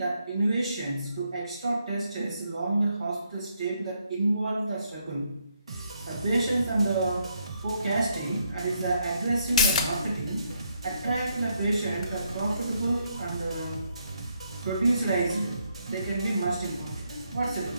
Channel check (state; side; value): inverted; both; correlation -0.75